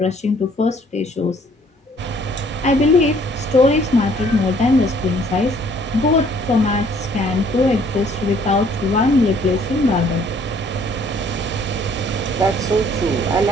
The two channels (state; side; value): normal; both; correlation 0.60